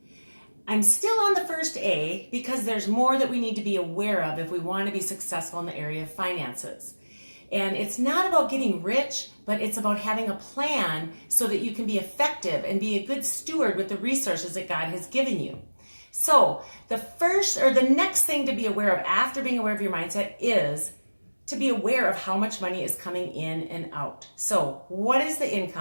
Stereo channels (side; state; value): both; inverted; correlation -1.00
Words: I'm still on the first A because there's more that we need to be aware of if we want to be successful in the area of finances. And it's not about getting rich, but it's about having a plan so that you can be effective and be a good steward with the resources that God has given you. So the next thing to be aware of after being aware of your mindset is to be aware of how much money is coming in and out. So what is the